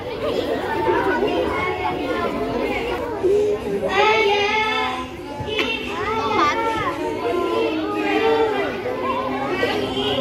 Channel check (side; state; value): both; identical; correlation 1.00